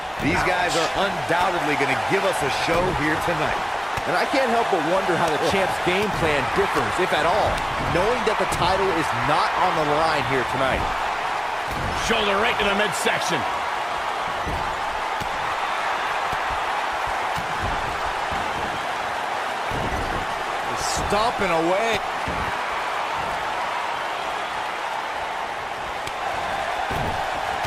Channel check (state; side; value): identical; both; correlation 1.00